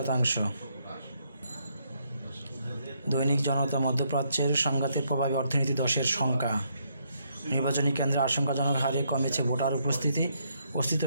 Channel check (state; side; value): inverted; both; correlation -0.74